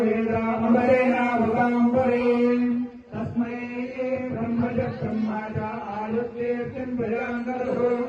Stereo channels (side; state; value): both; identical; correlation 1.00